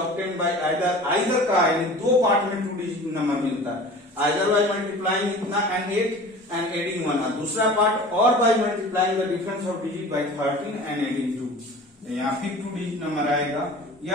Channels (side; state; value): both; normal; correlation 0.40